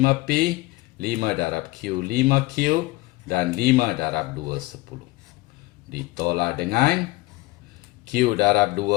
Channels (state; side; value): quieter; right; 20.2 dB